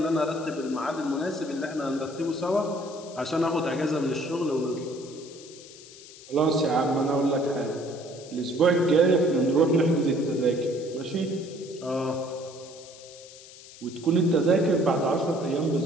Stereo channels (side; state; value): left; noise; hiss, 19 dB below the sound